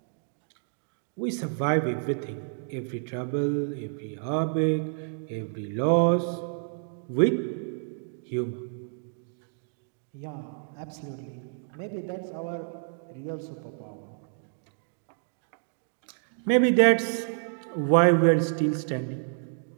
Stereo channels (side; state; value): left; silent; digital silence